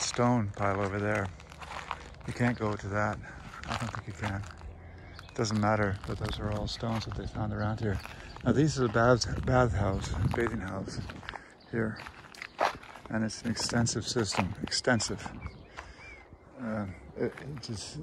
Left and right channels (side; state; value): both; identical; correlation 1.00